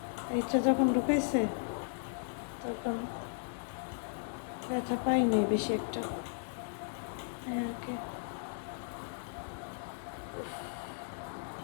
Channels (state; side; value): silent; right; digital silence